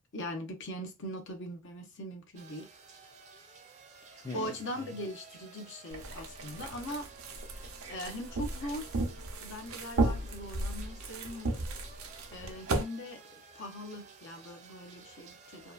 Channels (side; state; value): both; normal; correlation 0.46